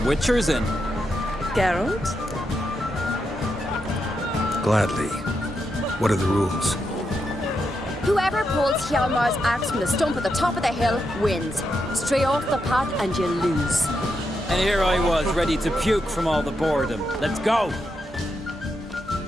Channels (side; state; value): both; normal; correlation 0.84